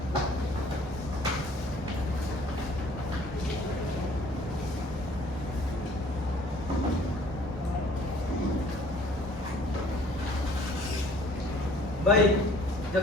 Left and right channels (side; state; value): both; normal; correlation 0.55